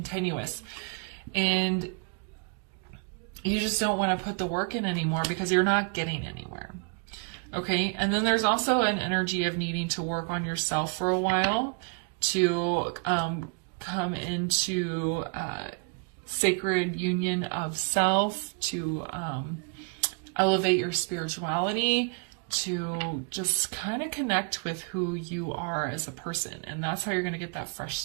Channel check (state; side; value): quieter; left; 36.5 dB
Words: And you just don't want to put the work in anymore because you're not getting anywhere. Okay, and then there's also an energy of needing to work on yourself for a while to come into sacred union of self, to elevate your spirituality, to just kind of connect with who you are as a person. And that's how you're going to get that fresh